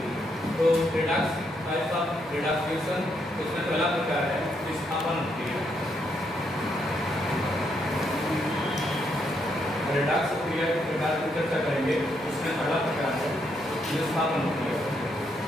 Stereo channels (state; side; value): normal; both; correlation 0.76